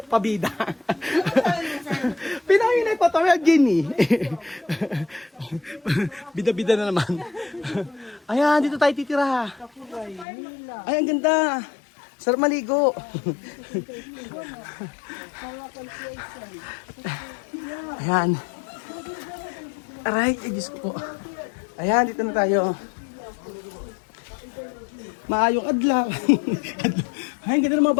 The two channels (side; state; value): right; drops out; at 10.2 s